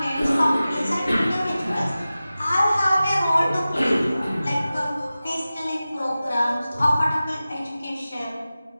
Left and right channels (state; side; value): inverted; both; correlation -0.95